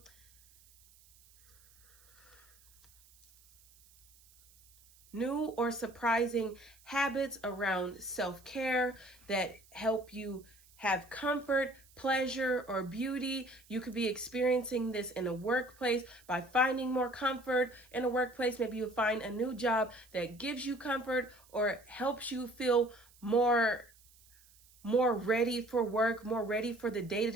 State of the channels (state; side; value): noise; right; hiss, 27 dB below the sound